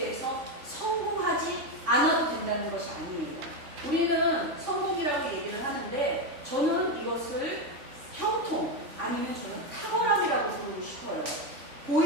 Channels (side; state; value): left; late; 3.5 ms